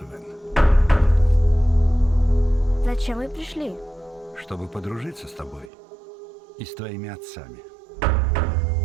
Вен. Зачем вы пришли? Чтобы подружиться с тобой и с твоими отцами.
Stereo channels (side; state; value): left; drops out; at 5.7 s